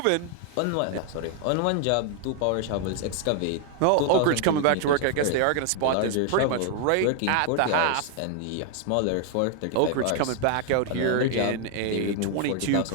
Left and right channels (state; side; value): different; both; correlation 0.00